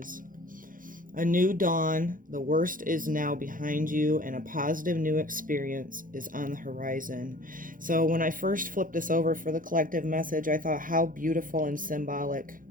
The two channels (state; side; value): late; left; 0.40 ms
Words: A new dawn, the worst is now behind you, and a positive new experience is on the horizon. So when I first flipped this over for the collective message, I thought how beautiful and symbolic